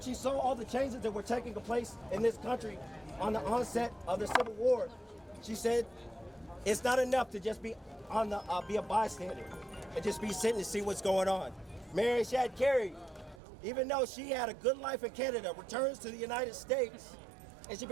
she saw all the changes that were taking place in this country on the onset of the Civil War, she said, it's not enough to just be be a bystander and just be sitting to see what's going on. Mary Shad Carey, even though she had a good life in Canada, returns to the United States and she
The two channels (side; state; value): left; drops out; at 13.4 s